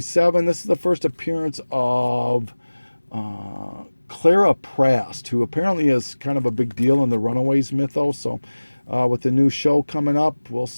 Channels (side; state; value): both; inverted; correlation -1.00